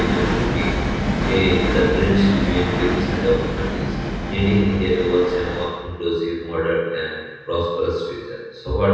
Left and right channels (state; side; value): identical; both; correlation 1.00